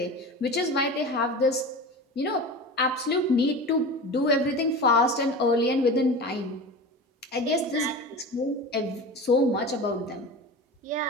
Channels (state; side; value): normal; both; correlation 0.31